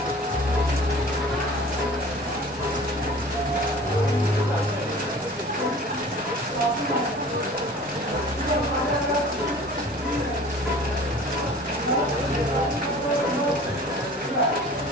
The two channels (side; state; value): both; normal; correlation 0.44